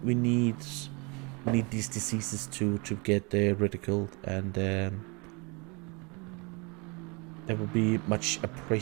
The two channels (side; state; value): left; quieter; 29.8 dB